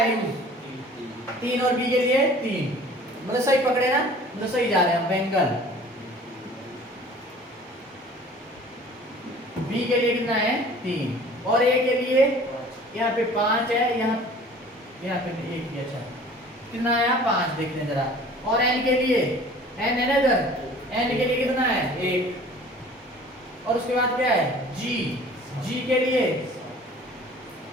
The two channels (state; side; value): normal; both; correlation 0.48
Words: यूज 3 और बी के लिए 3, मतलब सही पकड़े ना, मतलब सही जा रहे हैं बेंगल। बी के लिए कितना है 3, और ए के लिए यहाँ पे 5 है, यहाँ पे 1 ही, अच्छा कितना आया 5, देखने जरा। और एन के लिए, एन है ना इधर, एन के लिए कितना है 1, और उसके बाद क्या है जी, जी के लिए